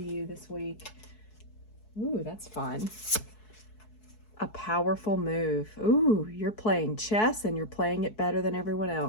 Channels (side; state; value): right; late; 4.7 ms